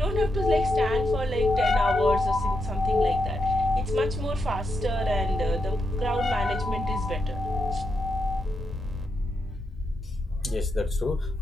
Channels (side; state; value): both; normal; correlation 0.83